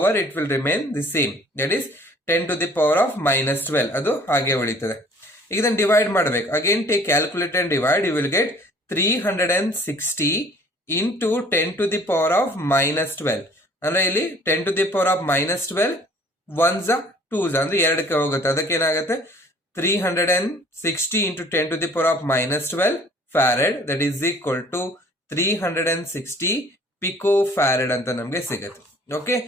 it will remain the same, that is 10 to the power of minus 12 ಅದು ಹಾಗೆ ಉಳಿತದೆ. ಈಗ ಇದನ್ನು ಡಿವೈಡ್ ಮಾಡಬೇಕು. Again take calculator and divide. You will get 360 into 10 to the power of minus 12. ಅಂದ್ರೆ ಇಲ್ಲಿ 10 to the power of minus 12 1s 2s ಅಂದ್ರೆ ಎರಡಕ್ಕೆ ಹೋಗುತ್ತೆ. ಅದಕ್ಕೆ ಏನಾಗುತ್ತೆ 360 into 10 to the power of minus 12 farad, that is equal to 360 picofarad ಅಂತ ನಮಗೆ ಸಿಗುತ್ತೆ. Okay,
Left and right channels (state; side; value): normal; both; correlation 0.53